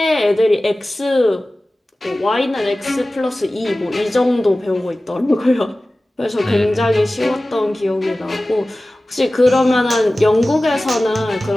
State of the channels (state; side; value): normal; both; correlation 0.97